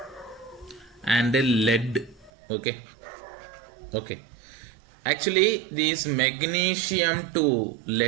and lead. Okay, actually this magnesium to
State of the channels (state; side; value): drops out; left; at 2.3 s